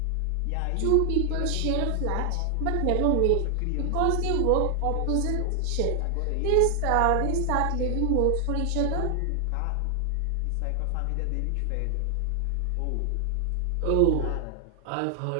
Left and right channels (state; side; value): different; both; correlation 0.00